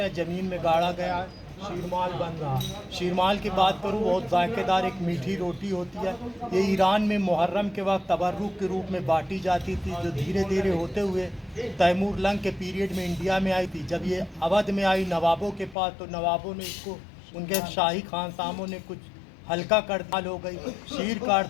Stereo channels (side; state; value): right; drops out; at 15.8 s